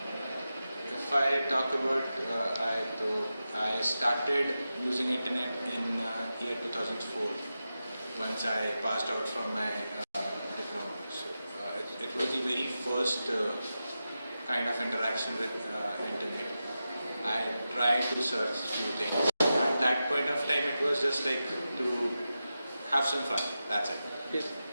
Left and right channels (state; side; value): inverted; both; correlation -0.91